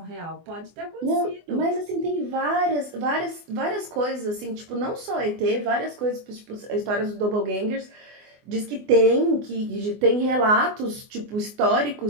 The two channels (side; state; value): left; late; 24 ms